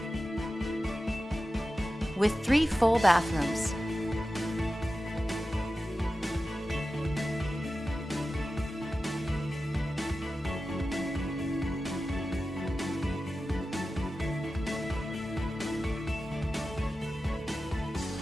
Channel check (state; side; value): normal; both; correlation 0.93